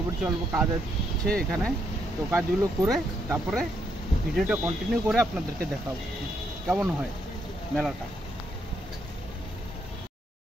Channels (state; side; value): normal; both; correlation 0.76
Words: পড়ছি, অল্প কাজ আছে এখানে। তো কাজগুলো করে তারপরে ভিডিওটা কন্টিনিউ করে আপনাদেরকে দেখাবো কেমন হয় মেলাটা।